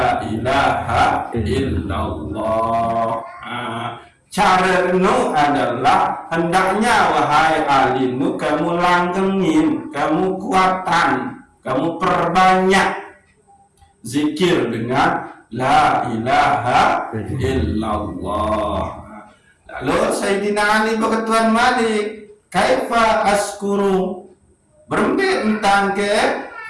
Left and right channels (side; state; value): both; identical; correlation 1.00